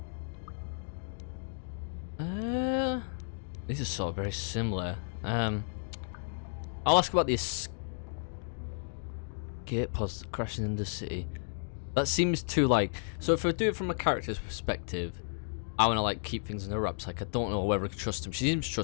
These are sort of very similar. I'll ask about the escape pods crashing in the city. That seems too like. So if I do it from a character's perspective, I want to like keep things in the wraps. Like I don't know whether I can trust him. She seems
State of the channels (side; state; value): right; silent; digital silence